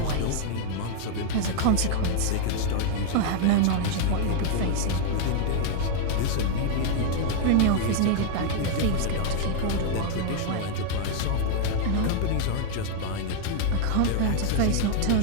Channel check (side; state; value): both; different; correlation -0.01